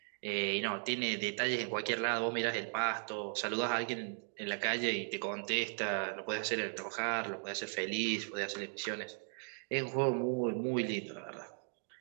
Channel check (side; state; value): left; silent; 53 dB below the other